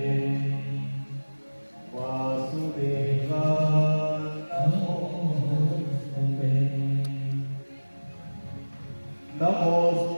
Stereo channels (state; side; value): inverted; both; correlation -1.00